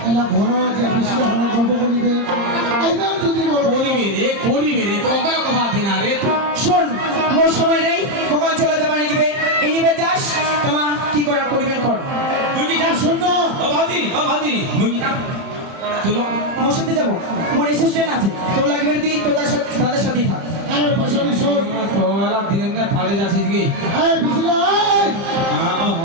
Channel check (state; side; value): late; left; 31 ms